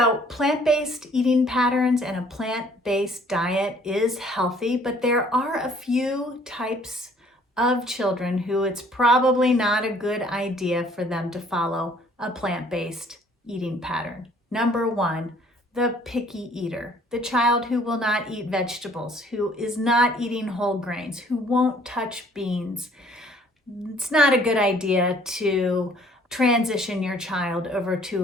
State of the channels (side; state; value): both; normal; correlation 0.58